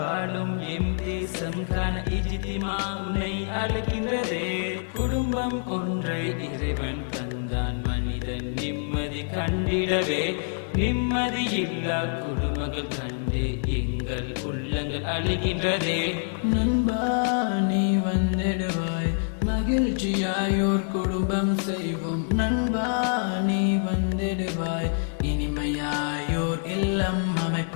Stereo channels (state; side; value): silent; right; 61 dB below the other